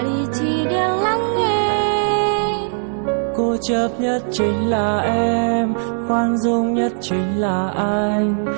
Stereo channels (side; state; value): left; silent; 63 dB below the other